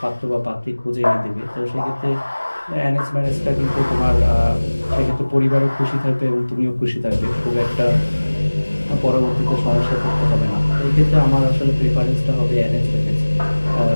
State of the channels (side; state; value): both; inverted; correlation -1.00